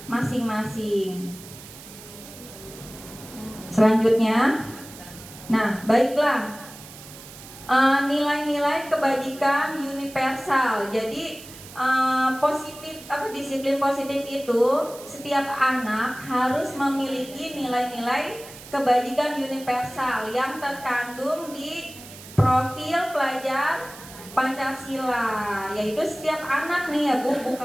masing-masing. Selanjutnya, nah baiklah, nilai-nilai kebajikan universal. Jadi disiplin positif itu setiap anak harus memiliki nilai-nilai kebajikan universal yang terkandung di profil pelajar Pancasila, yaitu setiap anak nih ya Bu,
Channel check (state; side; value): noise; right; hiss, 17 dB below the sound